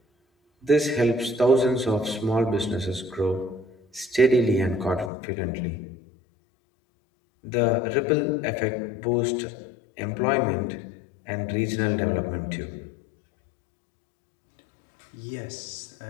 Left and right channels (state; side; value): drops out; right; at 5.1 s